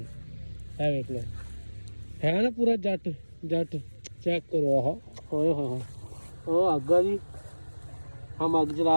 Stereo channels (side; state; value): both; inverted; correlation -1.00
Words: है वेख लो है ना पूरा जट जट चेक करो आह ओए होए ओ अग आ जी हम अग जला